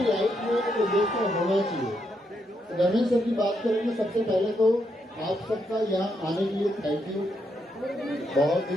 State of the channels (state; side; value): normal; both; correlation 0.79